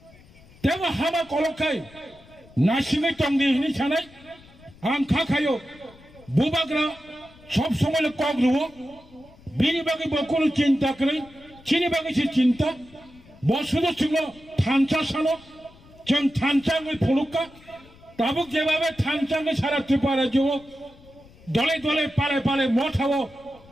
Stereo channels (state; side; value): noise; left; rumble, 24 dB below the sound